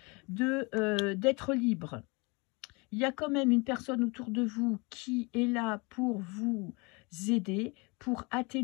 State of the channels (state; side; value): quieter; right; 28.4 dB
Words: d'être libre. Il y a quand même une personne autour de vous qui est là pour vous aider, pour